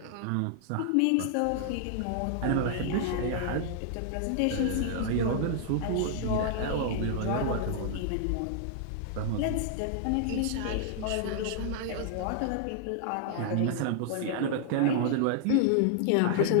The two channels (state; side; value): different; both; correlation -0.01